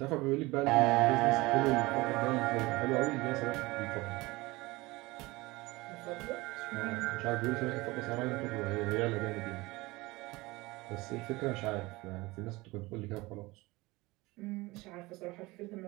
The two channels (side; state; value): left; quieter; 21.6 dB